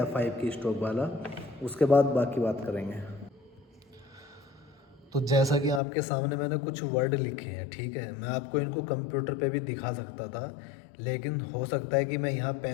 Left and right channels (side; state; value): right; drops out; at 5.8 s